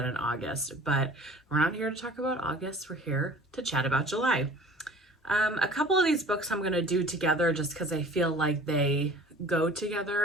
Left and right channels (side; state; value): both; normal; correlation 0.46